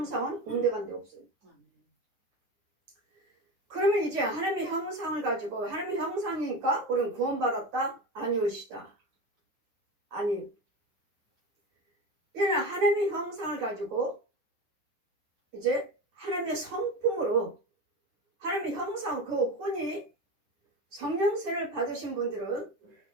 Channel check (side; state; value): left; late; 9.4 ms